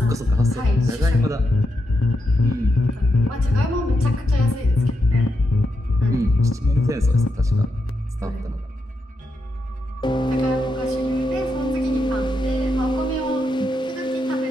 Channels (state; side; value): normal; both; correlation 0.84